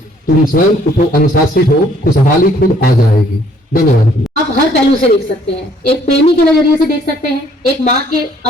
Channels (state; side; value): normal; both; correlation 0.62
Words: तुम स्वयं उठो, अनुशासित हो, खुशहाली खुद आ जाएगी। धन्यवाद। आप हर पहलू से देख सकते हैं, एक प्रेमी के नजरिए से देख सकते हैं, एक माँ के